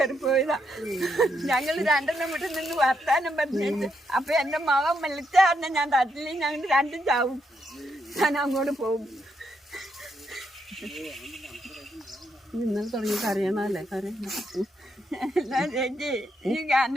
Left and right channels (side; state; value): both; normal; correlation 0.79